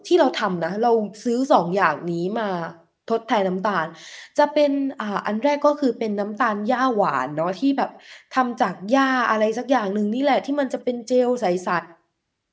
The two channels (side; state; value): both; identical; correlation 1.00